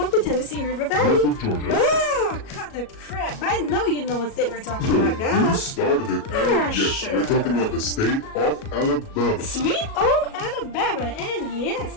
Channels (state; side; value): late; right; 37 ms